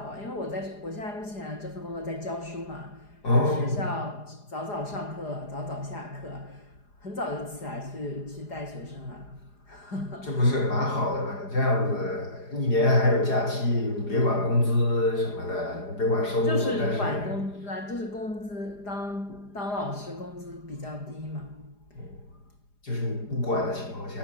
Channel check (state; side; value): late; right; 4.9 ms